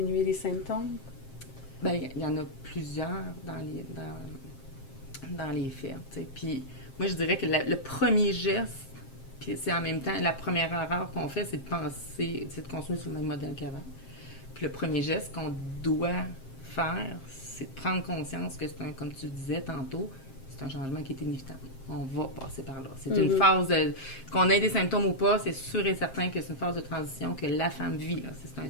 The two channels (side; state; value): right; late; 7.5 ms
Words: les symptômes? Bien, il y en a plusieurs dans les faits. T'sais. Puis moi, je dirais que le premier geste, puis c'est en même temps la première erreur qu'on fait, c'est de penser, c'est de continuer sur le même modèle qu'avant. Puis le premier geste qu'on doit faire, c'est de prendre conscience que c'est comme tu disais tantôt, c'est un changement qui est inévitable. On va passer par là. C'est une phase qu'on ait des symptômes ou pas, c'est sûr et certain que c'est une phase de transition que la femme vit. Là. C'est un